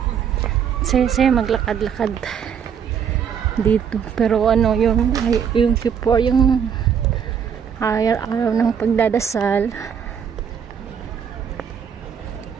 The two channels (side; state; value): left; quieter; 7.7 dB